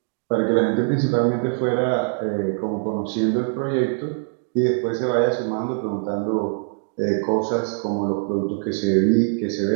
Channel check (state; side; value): silent; left; 56 dB below the other